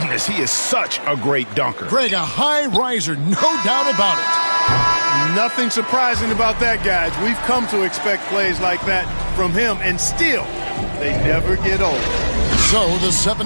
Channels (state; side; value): inverted; both; correlation -1.00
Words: he is such a great dunker. Greg, a high riser, no doubt about it. Nothing surprising about that, guys. We've come to expect plays like that from him, and still, they never get old. So the